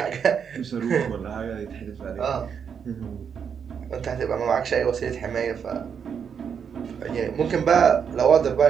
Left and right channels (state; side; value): quieter; left; 7.2 dB